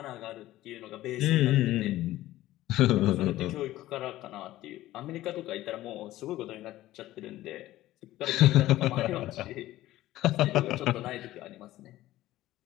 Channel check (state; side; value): quieter; right; 15.6 dB